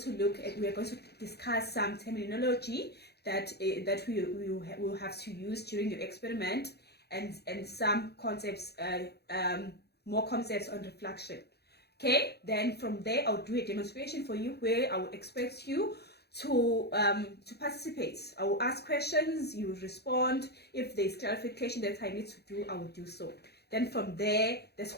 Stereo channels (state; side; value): late; right; 0.48 ms